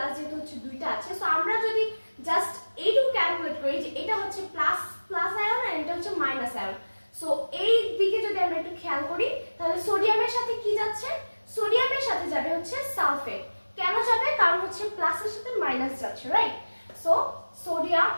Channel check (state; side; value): inverted; both; correlation -1.00